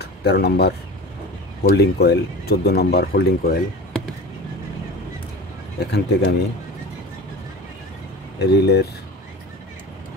13 number holding coil, 14 number holding coil. এখান থেকে আমি রিলের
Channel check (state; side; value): normal; both; correlation 0.34